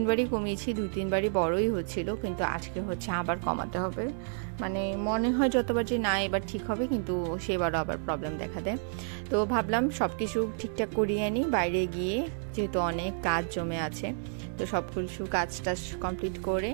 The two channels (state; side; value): silent; left; 58 dB below the other